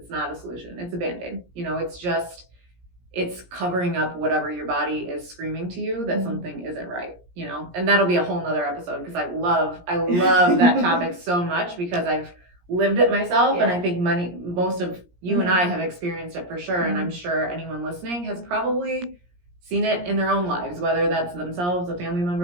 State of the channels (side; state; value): left; late; 17 ms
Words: not a solution. It's a Band-Aid. It's covering up whatever your body is screaming to you that something isn't right, and that'll be a whole nother episode, because I love that topic so much, because I've lived it myself. And I think most of you and I have experienced it for sure. And I'm sure anyone listening has probably seen it in their own lives, whether that's themselves, a family